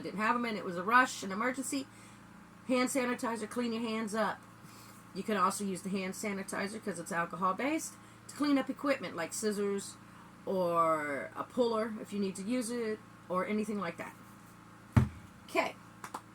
didn't have them and it was a rush, an emergency. Hand sanitizer, clean your hands up. You can also use the hand sanitizer because it's alcohol based to clean up equipment like scissors or a puller if you need to use it or anything like that. Okay,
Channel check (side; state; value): both; identical; correlation 1.00